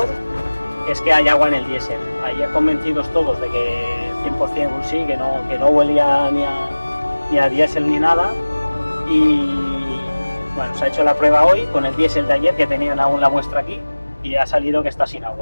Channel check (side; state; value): both; inverted; correlation -1.00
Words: es que hay agua en el diésel. Ayer convencidos todos de que 100% sí, que no huelía ni a diésel ni nada. Y bueno, se ha hecho la prueba hoy con el diésel de ayer, que tenían aún la muestra aquí, y ha salido que está sin